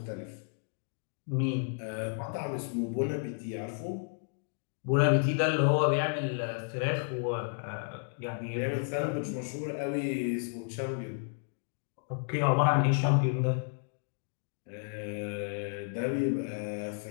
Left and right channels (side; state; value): right; silent; digital silence